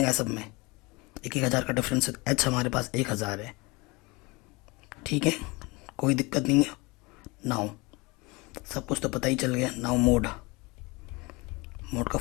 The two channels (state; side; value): quieter; right; 25.2 dB